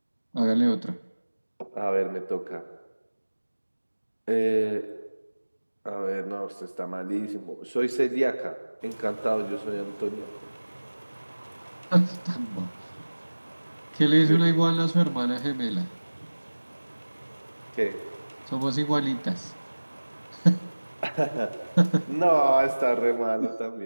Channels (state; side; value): inverted; both; correlation -1.00